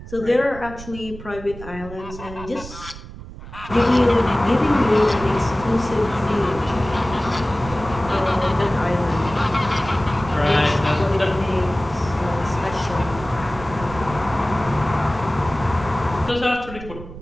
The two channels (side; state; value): right; noise; rumble, 14 dB below the sound